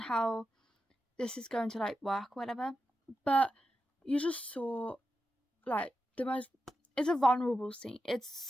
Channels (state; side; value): normal; both; correlation 0.89